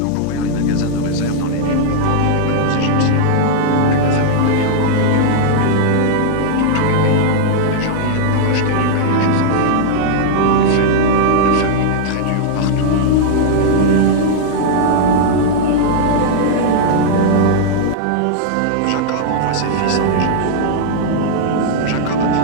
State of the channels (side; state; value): both; different; correlation -0.01